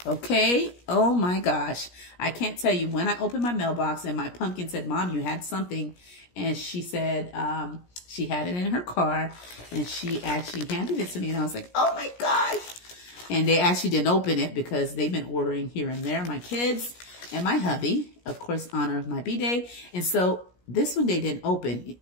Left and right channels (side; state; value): right; late; 17 ms